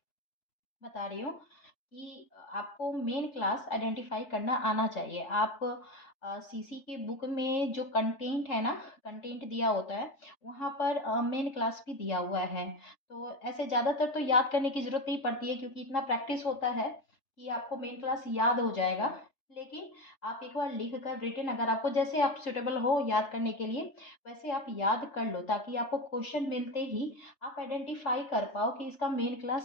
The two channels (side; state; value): right; late; 3.3 ms